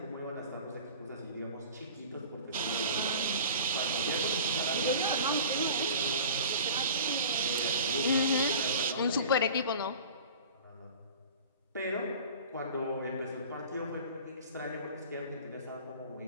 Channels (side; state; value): both; inverted; correlation -0.41